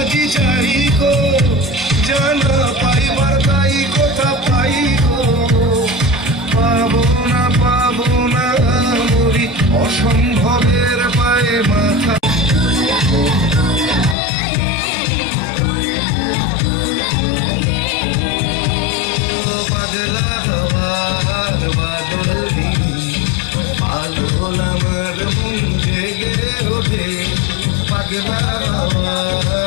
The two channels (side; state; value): right; drops out; at 14.2 s